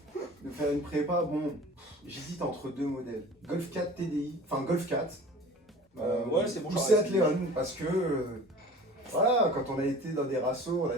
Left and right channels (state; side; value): normal; both; correlation 0.42